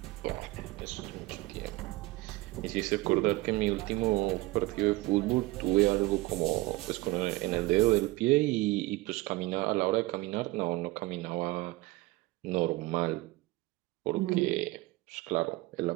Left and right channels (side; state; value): left; quieter; 20.1 dB